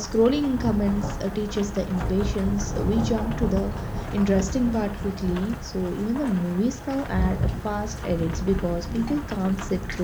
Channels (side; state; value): both; identical; correlation 1.00